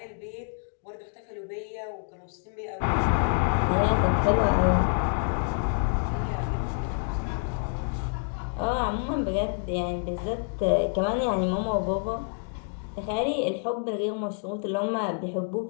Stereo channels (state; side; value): silent; right; 60 dB below the other